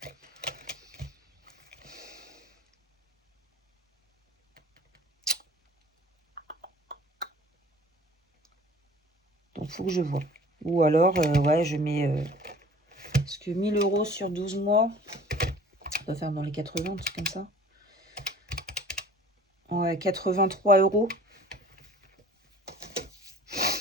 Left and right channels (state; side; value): normal; both; correlation 0.47